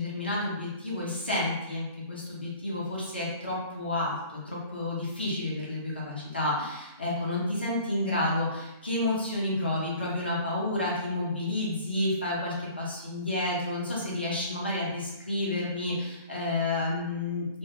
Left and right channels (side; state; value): both; inverted; correlation -0.48